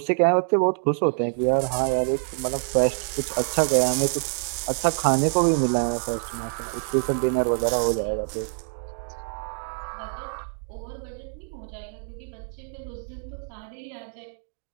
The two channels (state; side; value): silent; left; 61 dB below the other